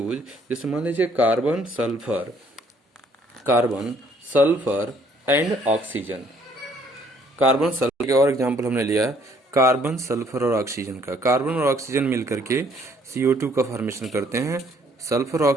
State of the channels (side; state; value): both; normal; correlation 0.64